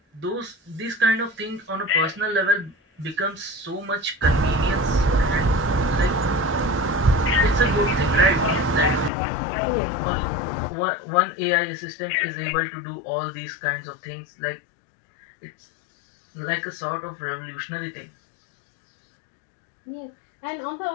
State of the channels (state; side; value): drops out; right; at 9.1 s